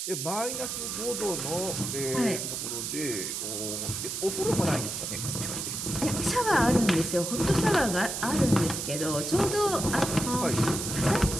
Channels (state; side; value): noise; right; hiss, 4 dB below the sound